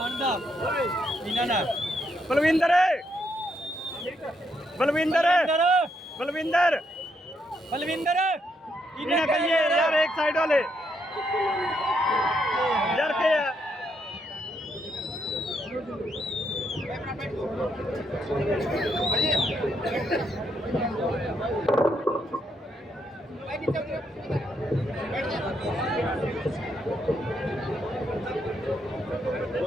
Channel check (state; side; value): normal; both; correlation 0.77